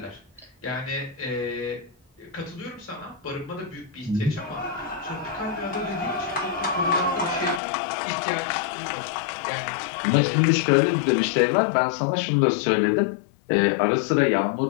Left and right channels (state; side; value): drops out; right; at 7.6 s